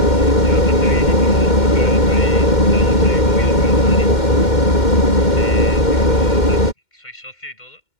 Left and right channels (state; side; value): late; right; 2.1 ms